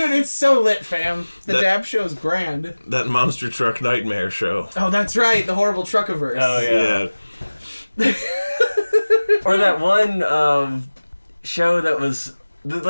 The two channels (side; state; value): both; inverted; correlation -1.00